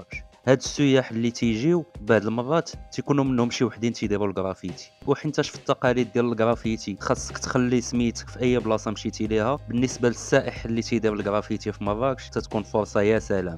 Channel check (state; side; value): identical; both; correlation 1.00